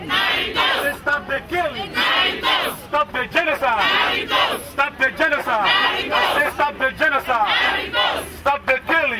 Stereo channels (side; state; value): both; identical; correlation 1.00